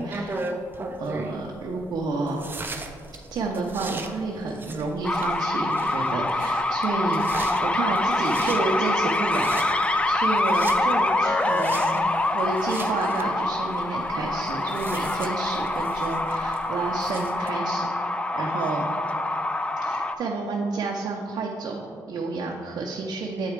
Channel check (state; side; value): normal; both; correlation 0.75